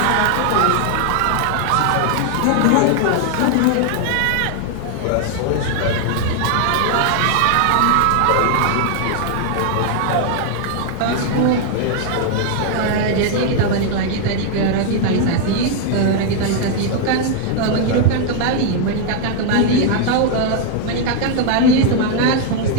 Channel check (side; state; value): both; different; correlation 0.00